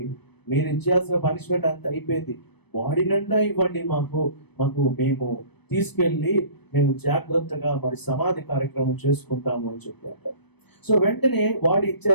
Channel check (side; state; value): right; late; 0.98 ms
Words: మీరు ఇచ్చేయాల్సిన పనిష్మెంట్ అంతా అయిపోయింది, బాడీ నిండా ఇవ్వండి మాకు మేము తీసుకెళ్ళి మేము జాగ్రత్తగా మరి సమాధి కార్యక్రమం చేసుకుంటాము అని చెప్పారు. సో వెంటనే బాడీ